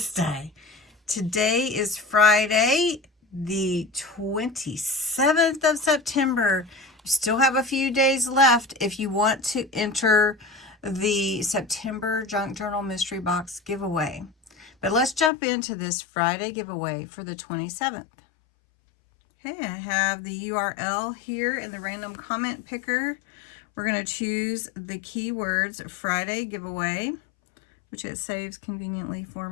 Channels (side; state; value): right; drops out; at 15.3 s